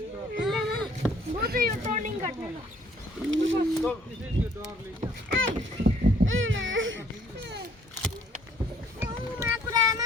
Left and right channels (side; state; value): both; normal; correlation 0.61